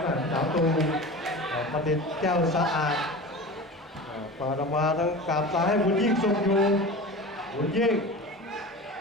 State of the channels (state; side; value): normal; both; correlation 0.33